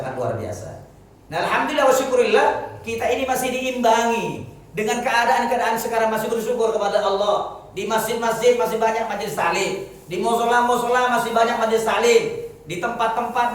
luar biasa. Nah alhamdulillah wa syukurillah, kita ini masih diimbangi dengan keadaan sekarang, masih bersyukur kepada Allah. Di masjid-masjid masih banyak majelis taklim, di musola masih banyak majelis taklim, di tempat-tempat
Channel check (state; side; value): identical; both; correlation 1.00